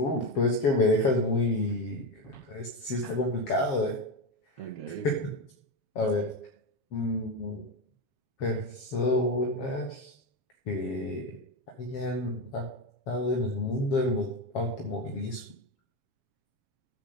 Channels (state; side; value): late; right; 7.3 ms